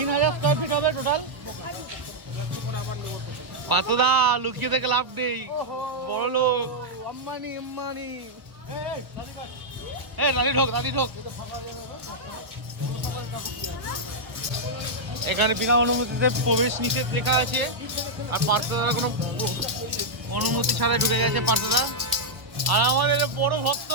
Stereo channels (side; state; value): left; late; 1.3 ms